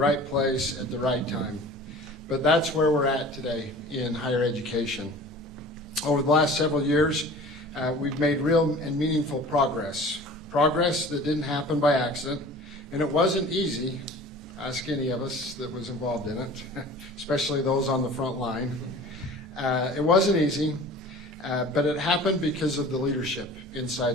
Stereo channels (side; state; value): both; normal; correlation 0.42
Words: place at the right time, but that's where we're at today in higher education. Over the last several years, we've made real and meaningful progress that didn't happen by accident, and it wasn't easy. Ask any of us that was involved in it, especially those on the front line. It wasn't easy, but it happened because of the leadership